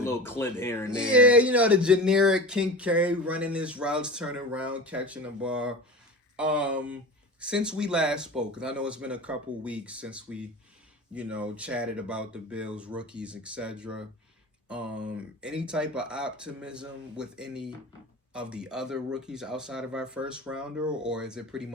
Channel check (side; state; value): both; normal; correlation 0.32